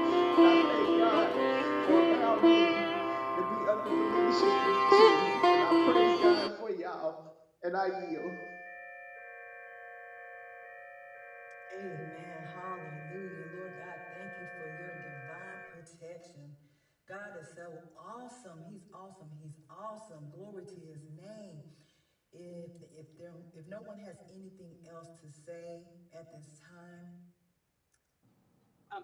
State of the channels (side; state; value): both; identical; correlation 1.00